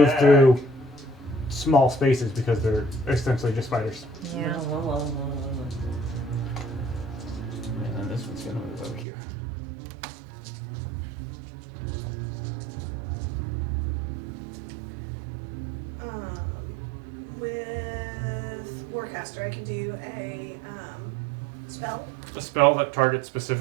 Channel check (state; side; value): drops out; left; at 9.1 s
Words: through small spaces because they're essentially just spiders. Yeah. And then this one's gonna move over here. With Warcaster, I can do a Spell? A spell that targets